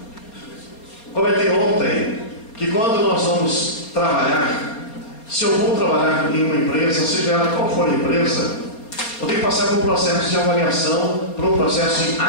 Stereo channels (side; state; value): right; late; 4.3 ms